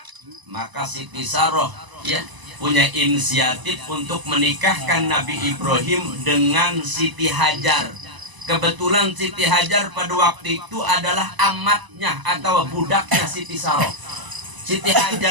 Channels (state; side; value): late; left; 1.0 ms